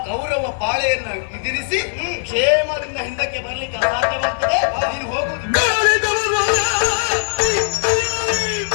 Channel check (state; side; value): silent; right; 57 dB below the other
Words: ಕೌರವ ಪಾಳೆಯನ್ನು ಎದುರಿಸಿ ಕ್ಷೇಮದಿಂದ ಹಿಂದಕ್ಕೆ ಬರ್ಲಿಕ್ಕೆ ಅಸಾಧ್ಯವಾಗ್ತದೆ. ನೀನು ಹೋಗುವುದು